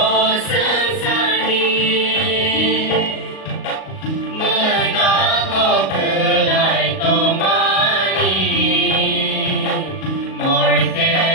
sensari Menako belai tomani Morke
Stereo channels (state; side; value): late; right; 38 ms